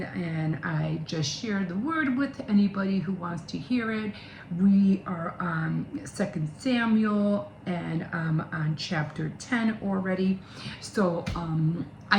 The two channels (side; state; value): both; identical; correlation 1.00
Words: and I just share the word with anybody who wants to hear it. We are on 2 Samuel, and I'm on chapter 10 already. So